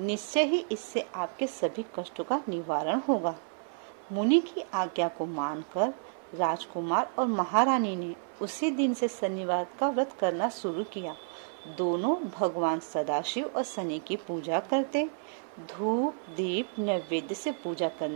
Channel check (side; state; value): left; silent; 57 dB below the other